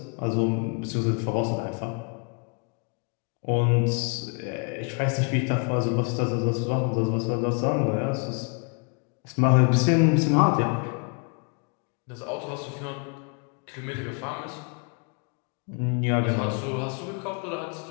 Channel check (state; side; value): quieter; right; 36.5 dB